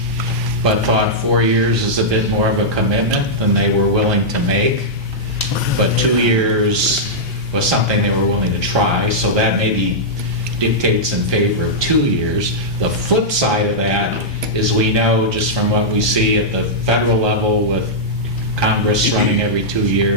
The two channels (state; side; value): normal; both; correlation -0.09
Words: but thought 4 years is a bit more of a commitment than they were willing to make. But 2 years was something they were willing to try, so that maybe dictates in favor of 2 years. The flip side of that is we know just from what we see at the federal level with Congress running every 2